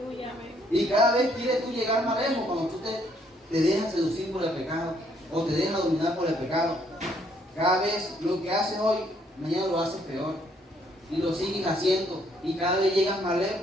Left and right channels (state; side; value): normal; both; correlation 0.68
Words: Y cada vez quieres tú llegar más lejos cuando tú te dejas seducir por el pecado o te dejas dominar por el pecado. Cada vez lo que haces hoy, mañana lo haces peor. y lo sigues haciendo y cada vez llegas más